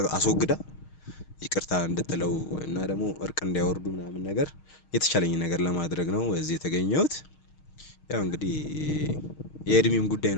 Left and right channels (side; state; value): right; late; 6.4 ms